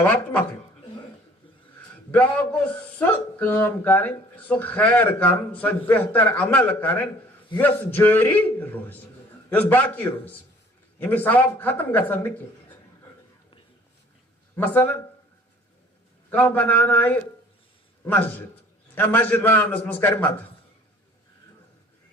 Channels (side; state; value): both; normal; correlation 0.53